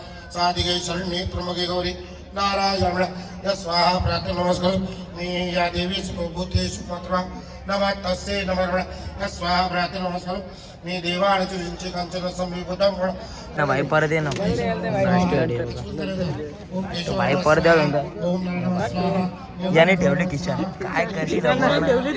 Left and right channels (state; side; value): identical; both; correlation 1.00